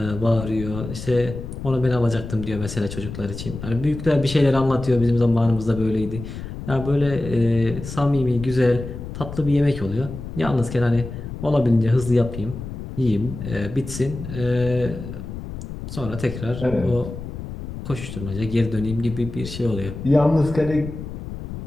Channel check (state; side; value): noise; left; rumble, 9 dB below the sound